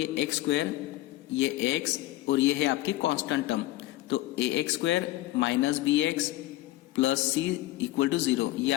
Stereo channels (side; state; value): right; quieter; 16.9 dB